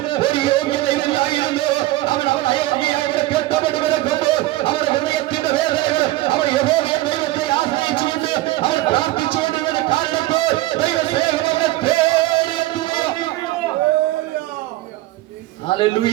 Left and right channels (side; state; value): left; quieter; 17.5 dB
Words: ഒരു യോഗ്യതയില്ലായിരുന്നു. അവൻ അയോഗ്യയായി ഇവിടെ കെട്ടപ്പെട്ട് കിടക്കുമ്പോൾ അവരുടെ ഹൃദയത്തിന്റെ വേദനകൾ അവർ യഹോവയെ ദൈവത്തെ ആശ്രയിച്ചുകൊണ്ട് അവർ പ്രാർത്ഥിച്ചുകൊണ്ട് കാരണപ്പോൾ ദൈവസ്നേഹം അവരെ തേടിയെത്തുക.